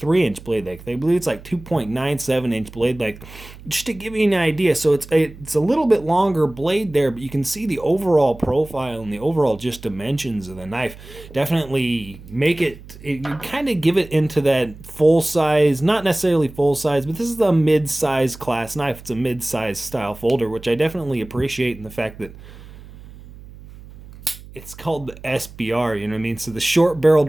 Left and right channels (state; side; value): noise; right; hum, 18 dB below the sound